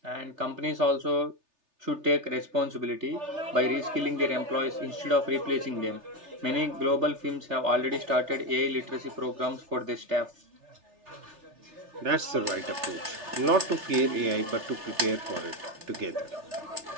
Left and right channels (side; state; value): left; late; 3.3 ms